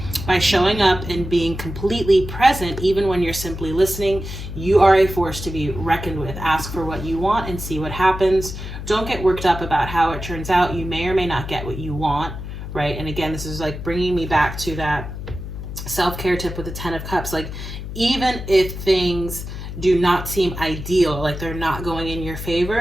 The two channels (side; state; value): left; noise; hum, 8 dB below the sound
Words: By showing up and being completely present, even when you're simply listening, you are a force to be reckoned with. Ask for what you want and see what happens. Don't get worked up about how it turns out. You may or may not get what you want, right? And again, this is like bringing me back to that self-care tip with the 10 of Cups. Like, even if things do not seem ideal, like they're not going in your